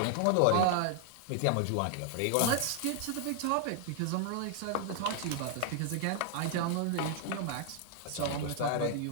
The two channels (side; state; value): both; different; correlation 0.00